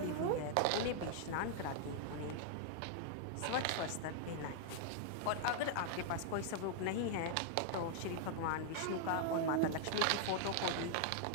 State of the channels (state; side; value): different; both; correlation 0.00